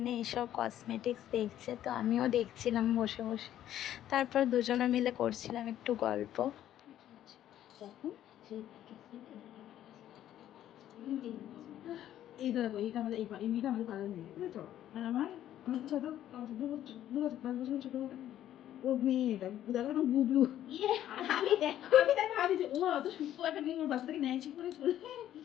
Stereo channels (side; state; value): right; quieter; 11.8 dB